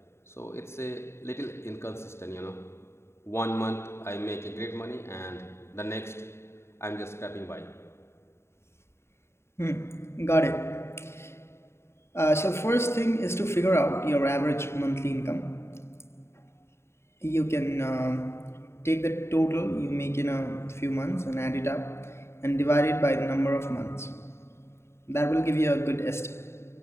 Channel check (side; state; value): right; late; 0.13 ms